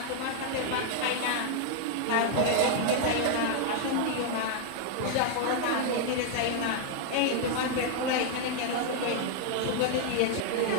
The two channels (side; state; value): both; different; correlation 0.00